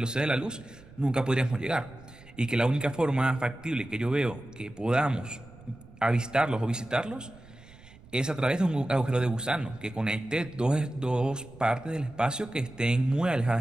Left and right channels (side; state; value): right; noise; rumble, 22 dB below the sound